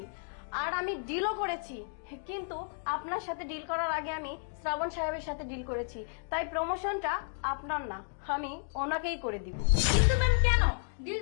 আর আমি ডিলও করেছি, কিন্তু আপনার সাথে ডিল করার আগে আমি শ্রাবণ সাহেবের সাথে ডিল করেছি, তাই প্রমোশনটা আপনার না, আমি ওনাকেই করে দিব। কিন্তু ম্যাম কেন? ডিল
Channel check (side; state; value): right; silent; digital silence